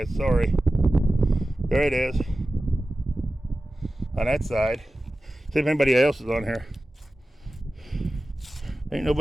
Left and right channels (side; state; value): both; normal; correlation 0.95